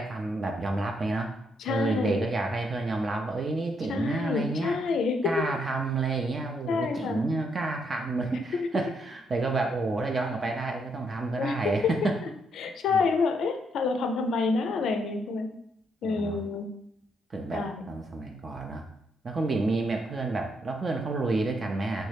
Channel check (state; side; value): normal; both; correlation 0.75